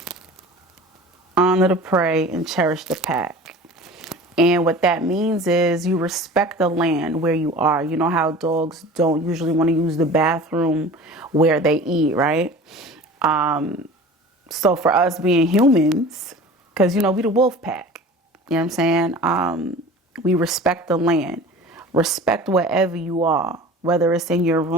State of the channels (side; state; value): both; normal; correlation 0.40